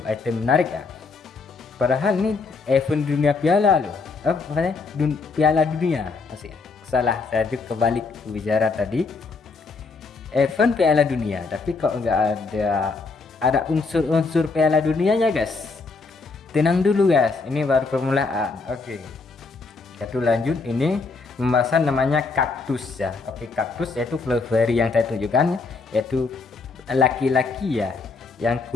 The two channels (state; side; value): quieter; right; 4.2 dB